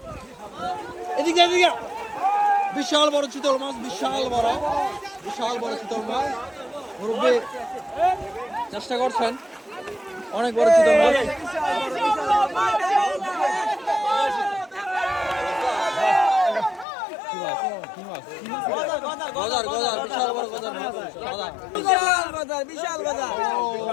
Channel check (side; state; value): right; drops out; at 16.9 s